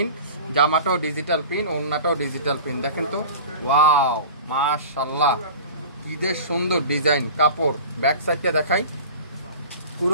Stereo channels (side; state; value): both; inverted; correlation -0.36